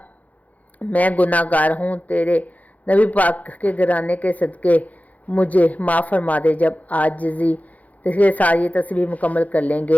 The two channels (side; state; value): right; late; 0.075 ms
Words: میں گناہ گار ہوں، تیرے نبی پاک کے گھرانے کے صدقے مجھے معاف فرما دے۔ جب عاجزی کے ساتھ یہ تسبیح مکمل کر لیں